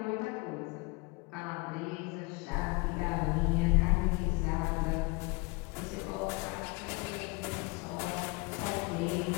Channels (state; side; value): quieter; right; 26.9 dB